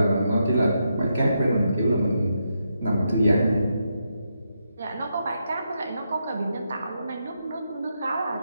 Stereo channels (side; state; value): both; inverted; correlation -0.83